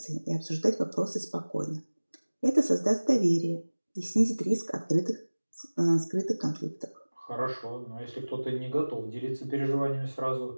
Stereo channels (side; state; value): both; inverted; correlation -1.00